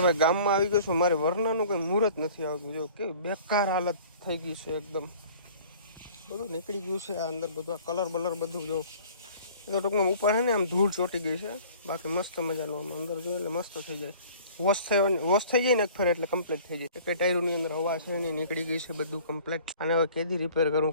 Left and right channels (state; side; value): inverted; both; correlation -0.49